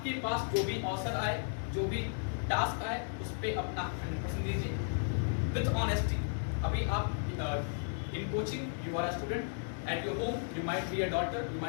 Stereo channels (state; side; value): silent; right; digital silence